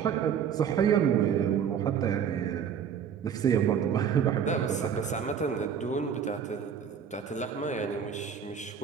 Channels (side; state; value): left; quieter; 7.7 dB